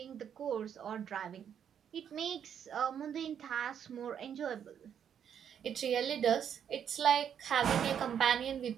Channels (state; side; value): quieter; left; 8.6 dB